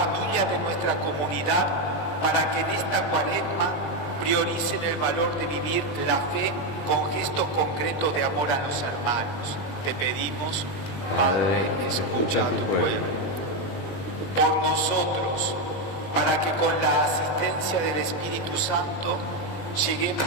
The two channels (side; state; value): right; late; 20 ms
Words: de nuestra comunidad, para que en esta Cuaresma prioricen el valor de vivir la fe con gestos concretos de amor a los hermanos. Te pedimos: Padre, escucha a tu pueblo. Por nosotros, para que con la asistencia del Espíritu Santo